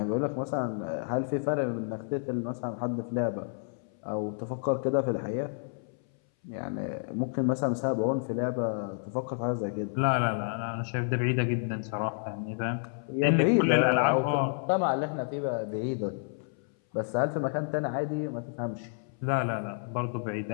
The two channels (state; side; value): silent; right; 58 dB below the other